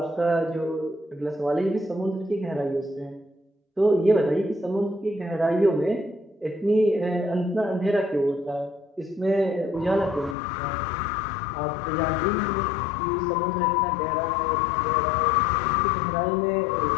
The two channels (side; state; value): right; drops out; at 10.4 s